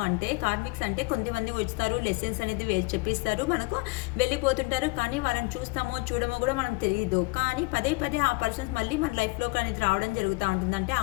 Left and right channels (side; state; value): right; quieter; 26.4 dB